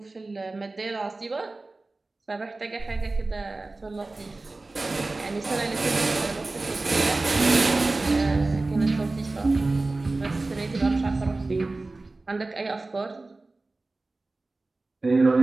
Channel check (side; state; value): left; quieter; 3.2 dB